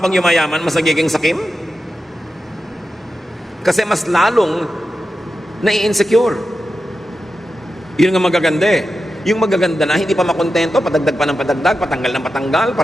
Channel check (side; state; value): both; normal; correlation 0.91